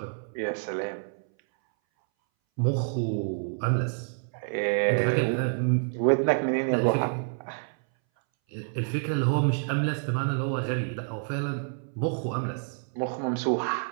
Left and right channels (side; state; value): left; silent; 59 dB below the other